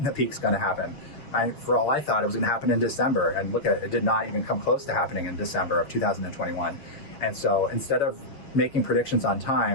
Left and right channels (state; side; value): late; right; 6.8 ms